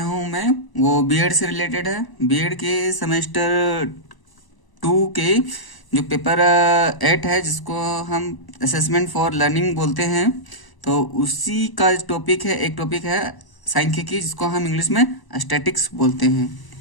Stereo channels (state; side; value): late; right; 1.0 ms